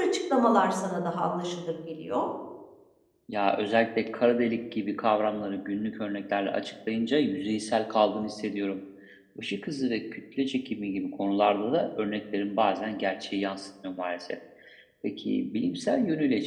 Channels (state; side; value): identical; both; correlation 1.00